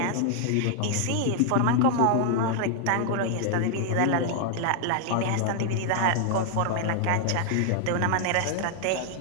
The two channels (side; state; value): both; different; correlation 0.00